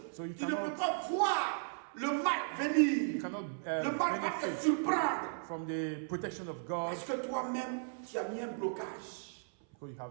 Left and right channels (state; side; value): silent; left; 54 dB below the other